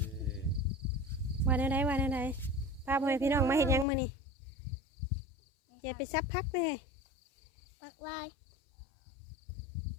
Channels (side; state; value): right; drops out; at 3.9 s